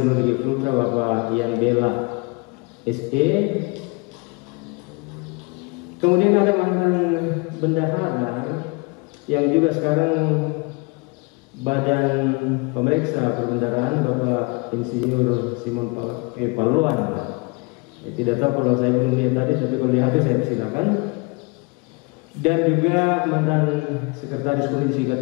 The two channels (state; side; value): quieter; right; 29.0 dB